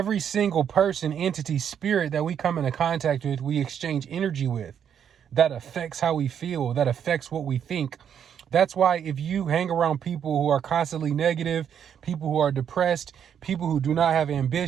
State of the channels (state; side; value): quieter; left; 8.5 dB